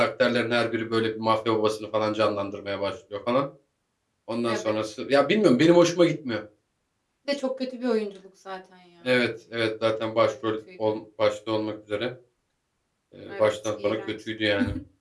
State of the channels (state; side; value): identical; both; correlation 1.00